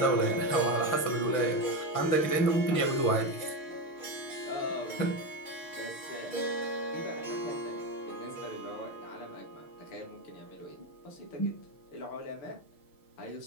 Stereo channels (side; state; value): right; late; 6.6 ms